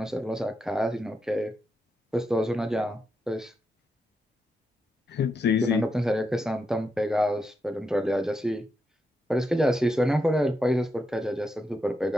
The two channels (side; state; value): both; normal; correlation 0.84